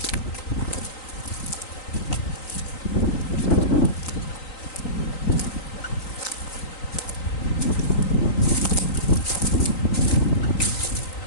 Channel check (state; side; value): late; right; 3.9 ms